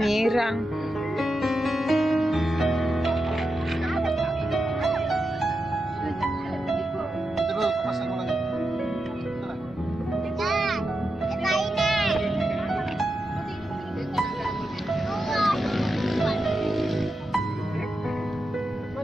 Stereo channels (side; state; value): both; normal; correlation 0.88